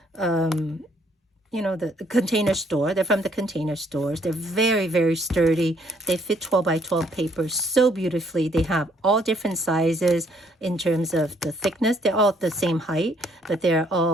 The Container Store. They're from the Container Stores. They're very, very sturdy. They fit 12 by 12 paper so beautifully. They have all different sizes in terms of the thickness. They're all the same height, but they're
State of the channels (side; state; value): both; normal; correlation 0.67